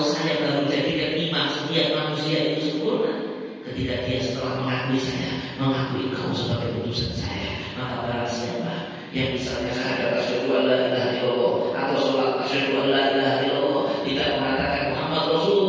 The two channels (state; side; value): identical; both; correlation 1.00